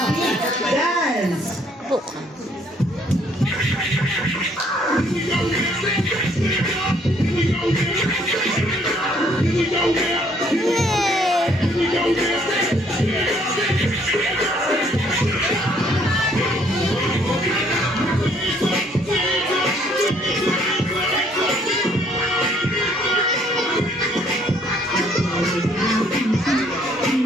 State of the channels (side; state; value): both; normal; correlation 0.64